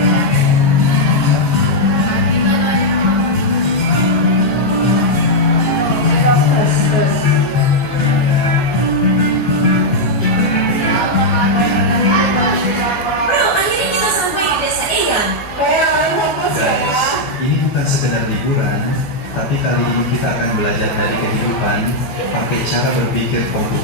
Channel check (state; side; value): late; right; 13 ms